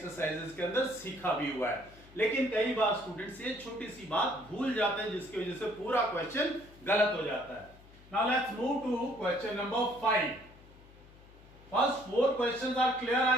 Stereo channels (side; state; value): left; noise; hum, 23 dB below the sound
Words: के अंदर सीखा भी हुआ है, लेकिन कई बार स्टूडेंट्स ये छोटी सी बात भूल जाते हैं जिसकी वजह से पूरा क्वेश्चन गलत हो जाता है। Now let's move to question number 5। First 4 questions are clear